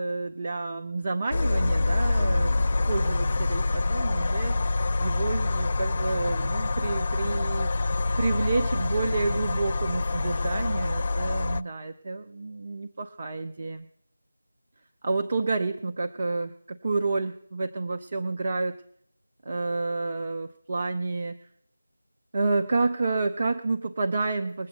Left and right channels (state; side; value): inverted; both; correlation -0.92